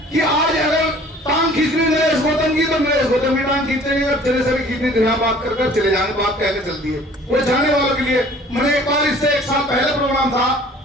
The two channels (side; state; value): both; normal; correlation 0.51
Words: कि आज अगर टांग खींचनी नरेश गौतम की तो नरेश गौतम की टांग खींचेंगे, अगर चले से खींचनी तो यहाँ बात कर चले जाने बात कहने चलती है। वो जाने वालों के लिए मैंने एक बार इससे 1 साल पहले प्रोग्राम था